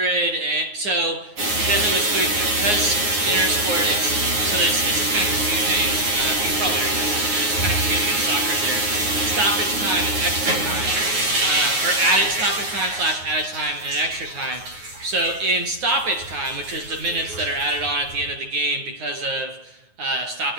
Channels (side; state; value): left; late; 9.5 ms